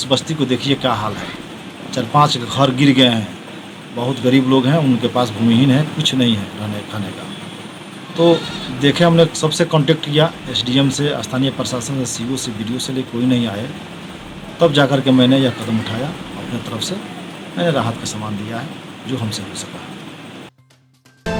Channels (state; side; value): identical; both; correlation 1.00